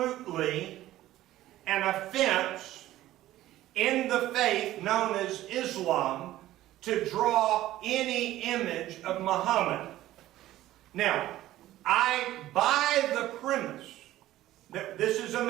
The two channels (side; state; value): left; quieter; 14.8 dB